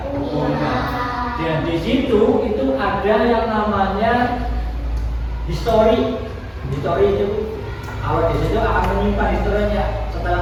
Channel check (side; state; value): both; identical; correlation 1.00